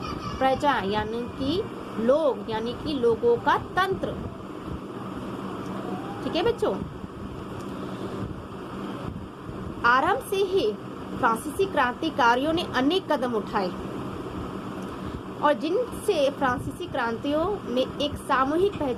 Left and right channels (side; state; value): both; identical; correlation 1.00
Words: प्रजा यानी कि लोग, यानी कि लोगों का तंत्र। ठीक है बच्चों, आरंभ से ही फ्रांसीसी क्रांतिकारियों ने अनेक कदम उठाए और जिनसे फ्रांसीसी क्रांतियों में एक सामूहिक